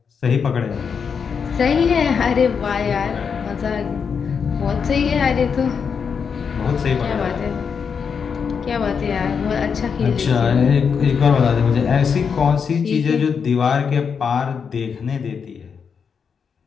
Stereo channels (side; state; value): right; quieter; 6.3 dB